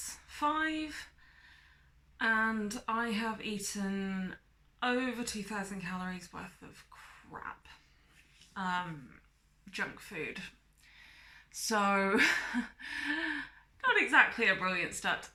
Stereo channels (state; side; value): identical; both; correlation 1.00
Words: 5 and I have eaten over 2,000 calories worth of crap, junk food. So, not exactly a brilliant start to